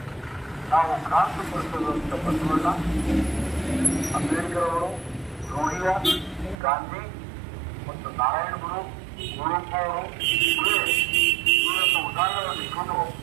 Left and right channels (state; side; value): drops out; left; at 6.6 s